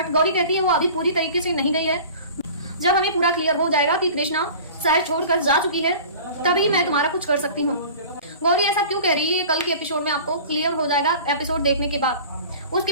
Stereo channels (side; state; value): both; inverted; correlation -0.41